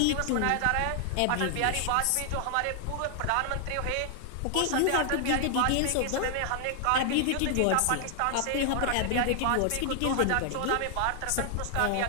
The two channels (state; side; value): different; both; correlation 0.00